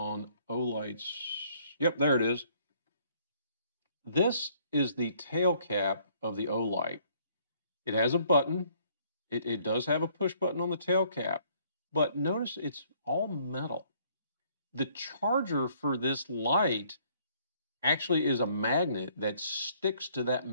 Olight's. Yep, there it is. This is the tail cap of the Olight. It has a button. It does have a push button on the tail cap, but notice it's all metal. The charger for this light actually is a magnet that sticks to that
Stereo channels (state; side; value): inverted; both; correlation -0.63